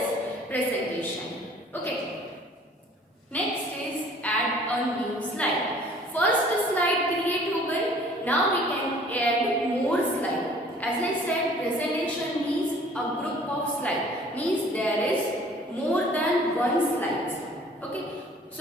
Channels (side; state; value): both; normal; correlation 0.53